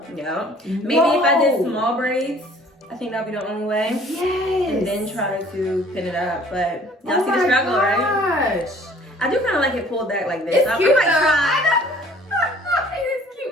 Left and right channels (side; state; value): both; normal; correlation 0.54